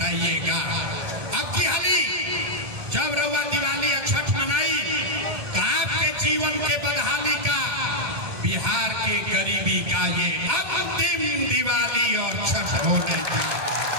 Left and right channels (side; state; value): left; late; 2.4 ms